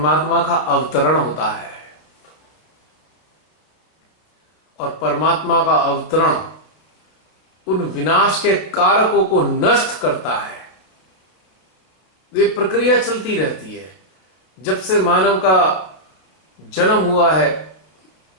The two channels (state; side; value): late; right; 32 ms